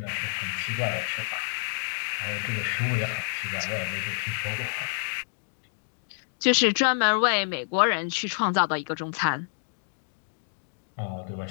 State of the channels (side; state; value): right; silent; digital silence